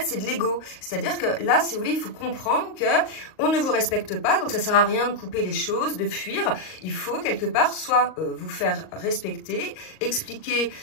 c'est de l'ego. C'est-à-dire que là si vous voulez il faut comprendre que on ne vous respecte pas donc ça sert à rien de couper les choses, de fuir. Il faut quelque part soit vous faire respecter, expliquer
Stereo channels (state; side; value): late; right; 38 ms